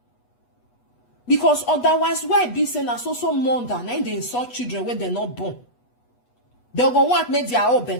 Because otherwise, why be saying that so mother, and they insult children when they're not born. They'll go want make their own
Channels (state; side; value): late; right; 8.2 ms